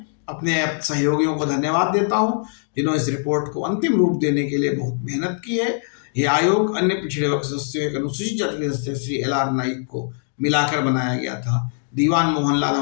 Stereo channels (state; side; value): silent; right; digital silence